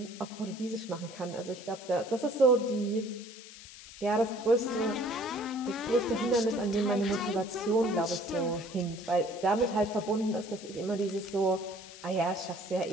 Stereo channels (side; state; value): left; noise; hiss, 16 dB below the sound